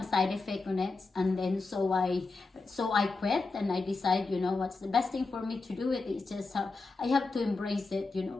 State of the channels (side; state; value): right; quieter; 3.8 dB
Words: side effect on it, and then so I quit, and I decide, what's the best thing for me to do. It's just I have to embrace it.